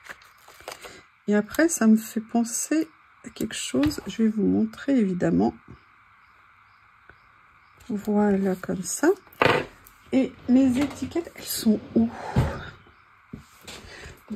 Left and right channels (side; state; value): both; identical; correlation 1.00